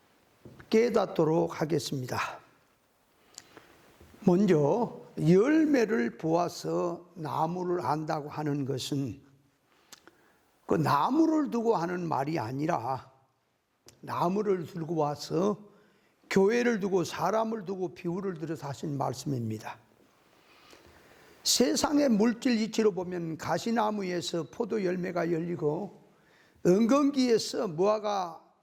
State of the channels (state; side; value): identical; both; correlation 1.00